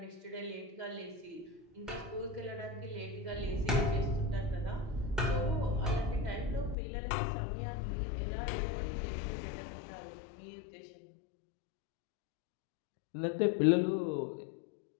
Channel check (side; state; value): right; drops out; at 6.8 s